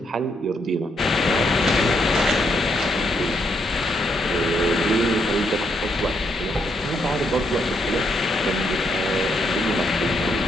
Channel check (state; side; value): normal; both; correlation 0.76